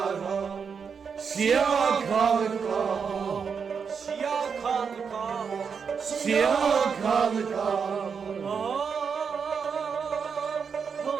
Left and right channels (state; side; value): quieter; left; 6.2 dB